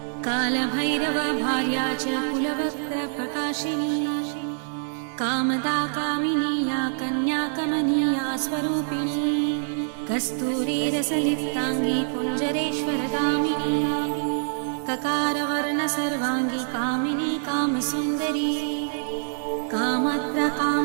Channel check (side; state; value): left; silent; digital silence